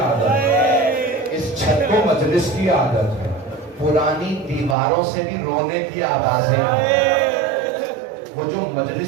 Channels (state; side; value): drops out; left; at 4.8 s